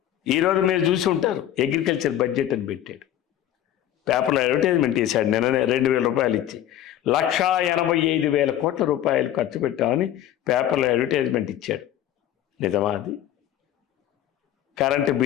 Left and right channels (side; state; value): right; quieter; 11.7 dB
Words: ఈరోజు మీరు చూసి ఉంటారు, అగ్రికల్చర్ బడ్జెట్ అని పెట్టాడు, పేపర్లో అడ్వర్టైజ్మెంట్ చేశాడు. నిన్ననే 2,000 రూపాయలు ఇచ్చి 1,85,000 కోట్ల రూపాయలు ఖర్చు పెట్టామని పేపర్లో అడ్వర్టైజ్మెంట్ ఇచ్చాడు. నిజమా అది? కరెంటు